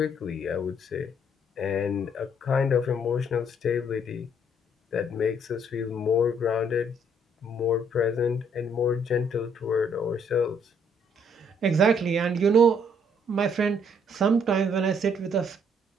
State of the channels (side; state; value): both; normal; correlation 0.66